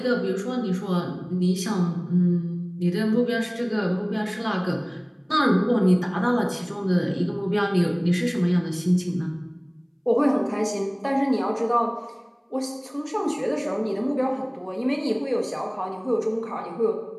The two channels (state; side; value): identical; both; correlation 1.00